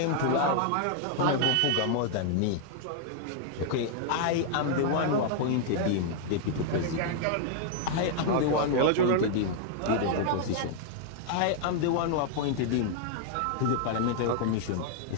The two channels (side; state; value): both; different; correlation 0.00